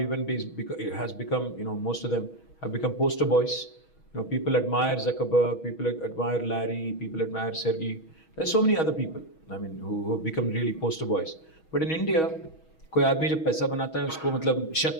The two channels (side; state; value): right; late; 6.3 ms